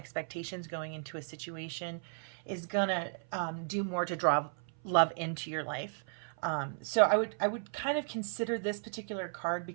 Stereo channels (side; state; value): left; silent; 55 dB below the other